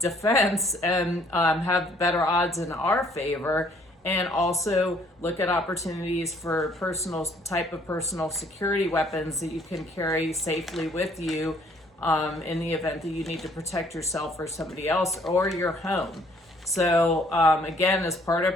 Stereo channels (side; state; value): both; normal; correlation 0.62